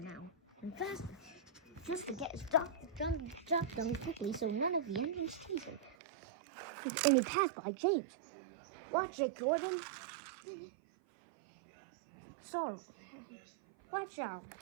now, and faster, just to get his job done quickly so none of the engines chase him. And he passed by James. Watch it, Gordon. Sorry. Watch out,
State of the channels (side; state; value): left; drops out; at 6.0 s